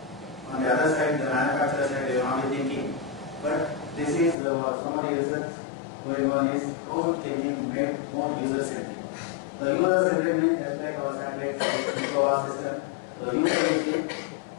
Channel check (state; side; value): drops out; right; at 4.4 s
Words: on the other side, the manufacturer side, they will not be thinking. But this is some of the research going on is how thinking made more user-centric. The user-centric means just like our satellites, our system, the user will see